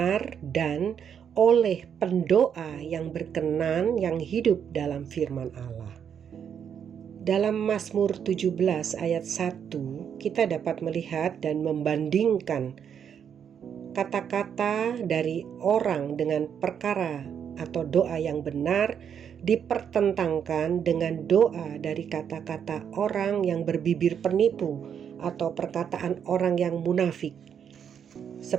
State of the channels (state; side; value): quieter; left; 8.0 dB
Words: dan oleh pendoa yang berkenan yang hidup dalam firman Allah. Dalam Mazmur 17 ayat 1 kita dapat melihat dan membandingkan kata-kata dari orang dengan perkara atau doa yang benar dipertentangkan dengan doa dari kata-kata orang yang berbibir penipu atau perkataan orang yang munafik.